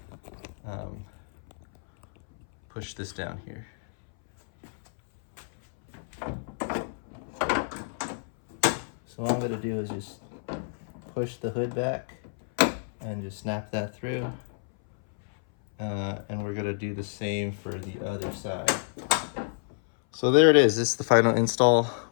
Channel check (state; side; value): silent; right; 59 dB below the other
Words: push this down here. So what I'm going to do is just push the hood back and just snap that through. And we're going to do the same for the other side. So there it is. This is the final install.